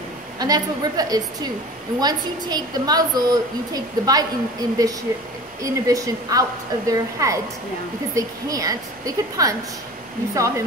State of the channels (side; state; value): both; normal; correlation 0.38